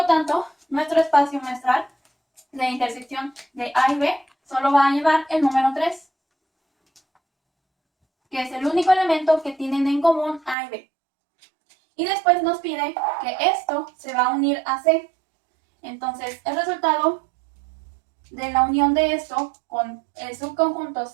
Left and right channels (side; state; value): left; drops out; at 10.6 s